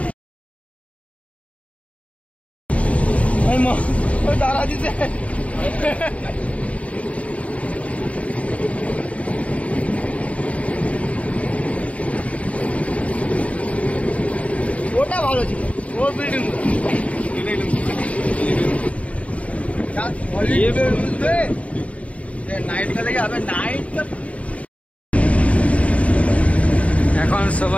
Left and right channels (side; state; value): right; late; 0.066 ms